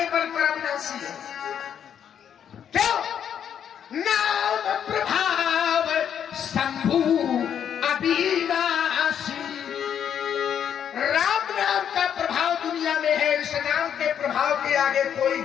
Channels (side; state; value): right; quieter; 8.7 dB